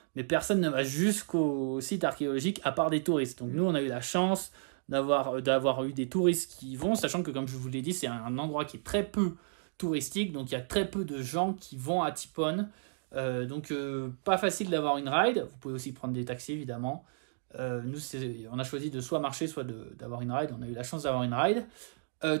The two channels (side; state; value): left; silent; digital silence